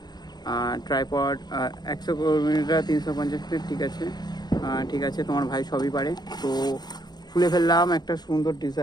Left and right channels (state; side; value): late; right; 0.20 ms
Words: ট্রাইপড 100 মিটার 350 ফিট, ঠিক আছে ঠিক আছে, তোমার ভাই সবই পারে। তো খুলে ফেললাম একটা সুন্দর